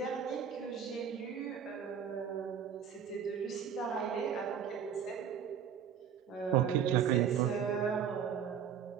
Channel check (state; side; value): quieter; left; 8.0 dB